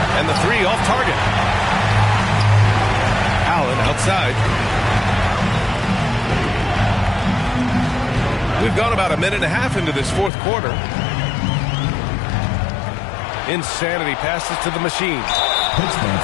And the 3 off target. Allen outside. We've gone about a minute and a half into this fourth quarter. Insanity passes to the machine. Pittsburgh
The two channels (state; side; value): drops out; right; at 10.3 s